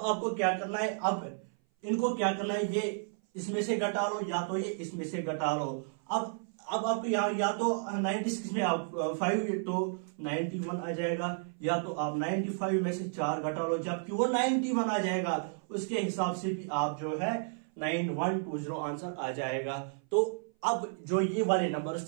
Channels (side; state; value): left; silent; 56 dB below the other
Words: आपको क्या करना है, अब इनको क्या करना है, ये इसमें से घटा लो या तो ये इसमें से घटा लो। अब आपको यहाँ या तो 96 में आप 5 तो 91 आ जाएगा, या तो आप 95 में से 4 घटा लो जबकि वो 91 आ जाएगा, उसके हिसाब से भी आप जो है 9120 आंसर आ जाएगा। तो अब जो ये वाले नंबर्स